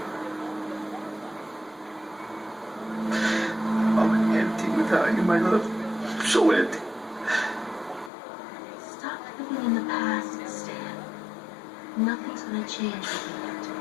I'm empty without you, my love. So empty. Stop living in the past, Stan. Nothing's gonna change when we get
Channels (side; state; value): right; drops out; at 8.1 s